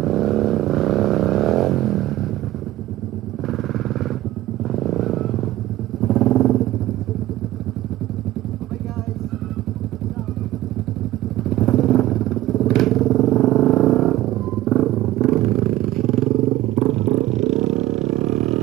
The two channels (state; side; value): quieter; left; 15.5 dB